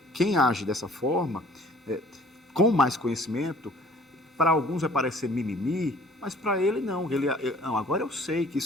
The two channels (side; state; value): both; normal; correlation 0.54